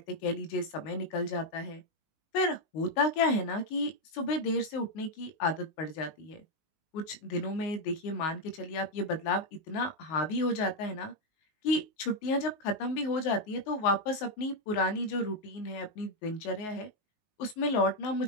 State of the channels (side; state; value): right; late; 19 ms